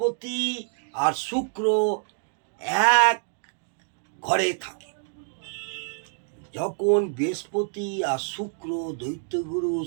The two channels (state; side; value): silent; left; digital silence